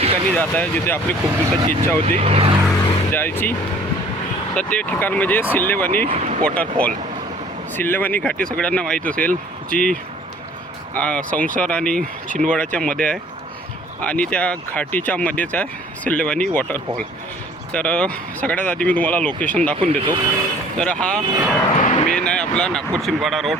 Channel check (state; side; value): normal; both; correlation 0.53